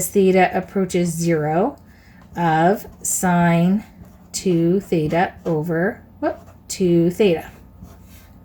theta approaches 0 of sine 2 theta over 2 theta.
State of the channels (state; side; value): identical; both; correlation 1.00